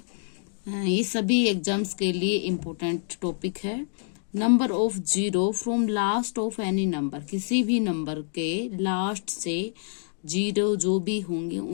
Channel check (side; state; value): right; silent; 60 dB below the other